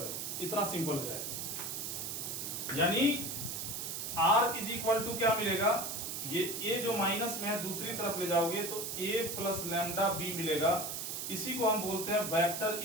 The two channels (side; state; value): right; noise; hiss, 4 dB below the sound